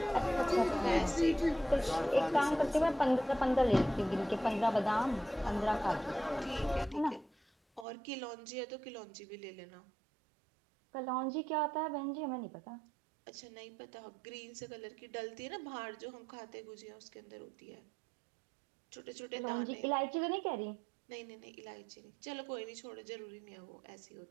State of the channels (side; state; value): left; drops out; at 7.9 s